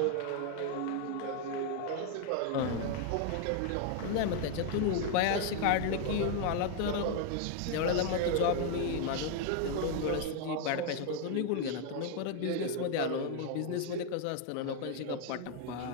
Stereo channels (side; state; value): both; different; correlation 0.00